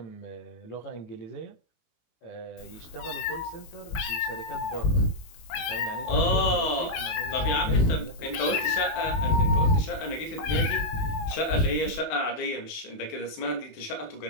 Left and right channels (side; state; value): right; late; 19 ms